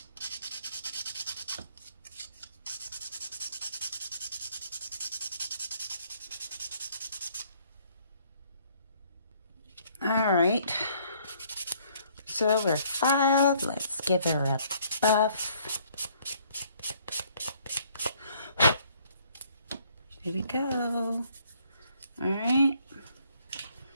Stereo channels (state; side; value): inverted; both; correlation -0.64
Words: All right. So we're filed. Let's give her a buff. Here we go. All right.